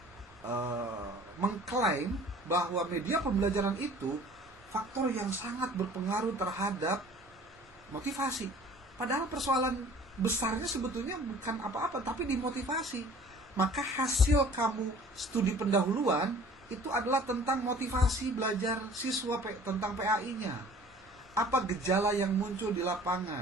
mengklaim bahwa media pembelajaran itu faktor yang sangat berpengaruh terhadap motivasi. Padahal persoalan besarnya sebetulnya bukan apa-apa, tapi di motivasi. Maka hasil kamu studi pendahuluan itu adalah tentang motivasi belajar siswa tentang PAI-nya. Apa gejala yang muncul di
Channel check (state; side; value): normal; both; correlation 0.49